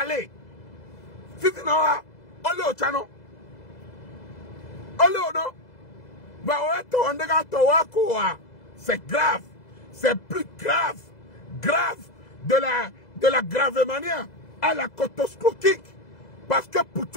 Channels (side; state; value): right; late; 2.0 ms